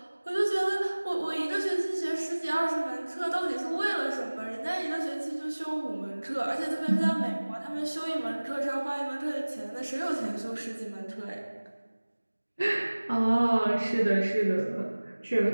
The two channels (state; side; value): inverted; both; correlation -1.00